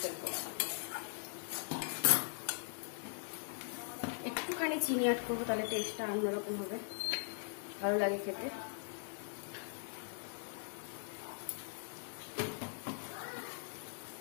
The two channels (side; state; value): right; silent; 51 dB below the other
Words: ফেলবো। একটুখানি চিনি অ্যাড করবো, তাহলে টেস্টটা অন্যরকম হবে, ভালো লাগে খেতে।